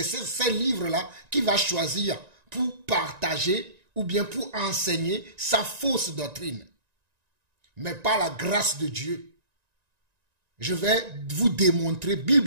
ces livres-là qu'il va choisir pour partager ou bien pour enseigner sa fausse doctrine. Mais par la grâce de Dieu, je vais vous démontrer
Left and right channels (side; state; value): left; late; 1.9 ms